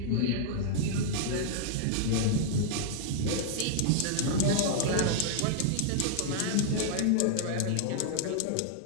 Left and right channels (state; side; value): different; both; correlation -0.01